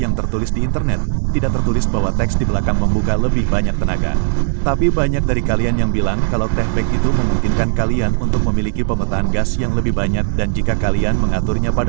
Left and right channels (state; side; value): silent; left; digital silence